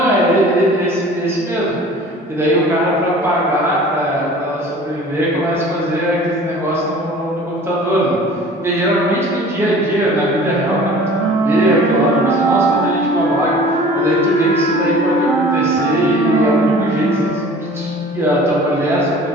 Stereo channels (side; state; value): both; normal; correlation 0.45